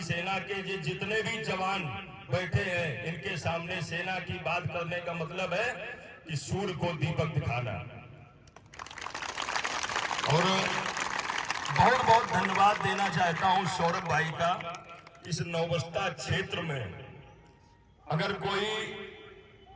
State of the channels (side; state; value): both; identical; correlation 1.00